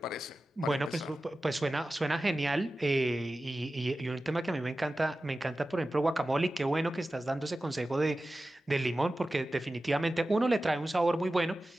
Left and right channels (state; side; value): normal; both; correlation 0.95